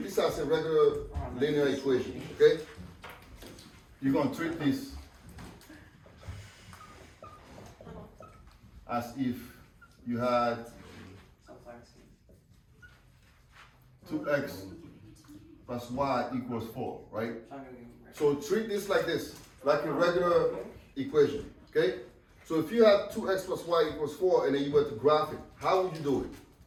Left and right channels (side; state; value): both; identical; correlation 1.00